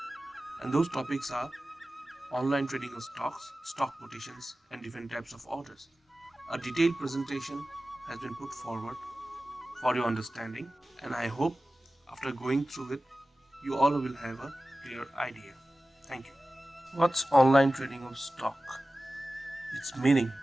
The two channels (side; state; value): both; normal; correlation 0.95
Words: And those topics are online trading of stocks, stock quotations, and different types of orders. A detailed presentation has been put forward for your understanding, and I hope after going through it, you all will have a clear idea. Thank you. What's online trading of stock? Its meaning.